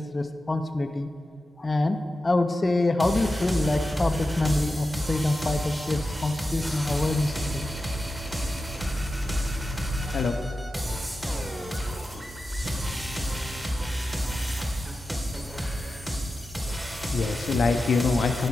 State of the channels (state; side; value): normal; both; correlation 0.92